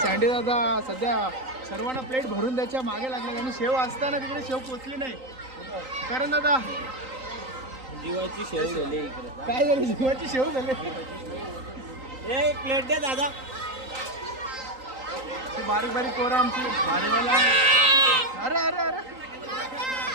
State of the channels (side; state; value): left; late; 3.9 ms